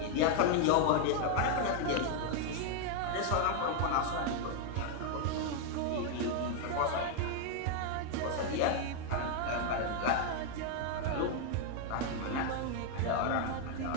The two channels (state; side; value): different; both; correlation 0.00